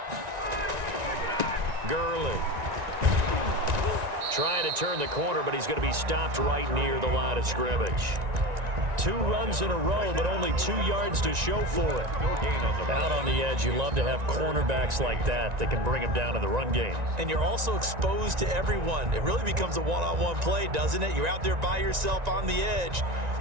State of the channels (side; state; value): left; late; 1.9 ms